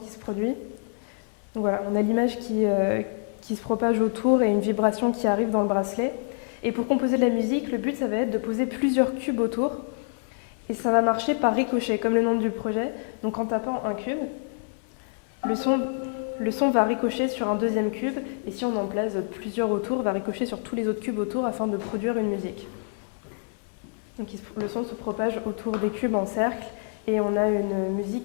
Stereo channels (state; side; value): silent; right; 60 dB below the other